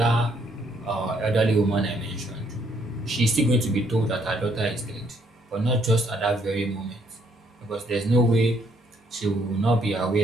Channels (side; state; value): both; normal; correlation 0.69